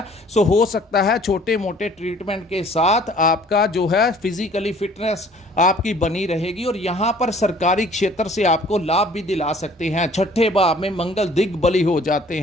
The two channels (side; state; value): both; normal; correlation 0.54